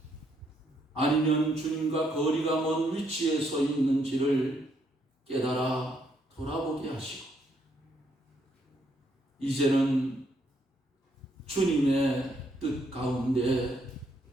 아니면 주님과 거리가 먼 위치에 서 있는지를 깨달아 돌아보게 하시고 이제는 주님의 뜻 가운데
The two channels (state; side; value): normal; both; correlation 0.73